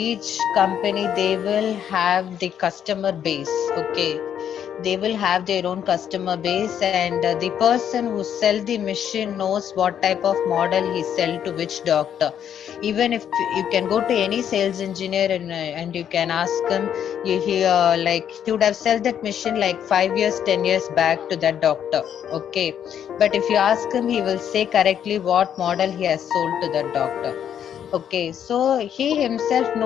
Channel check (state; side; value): quieter; right; 9.2 dB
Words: company, they will have the customer base. Okay, they will have their own customer base, and the person who sell the machine knows what type of model he sell to which doctor. Even if you can go to any sales engineer and you can ask him, like he would have sold that machine like 5 years, 10 years back to that doctor. Okay, but if you ask him, he will say correctly what model he has sold to that doctor. Okay, so he himself